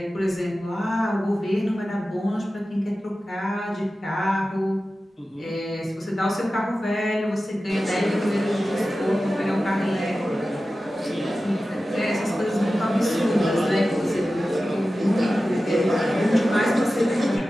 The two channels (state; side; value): normal; both; correlation 0.94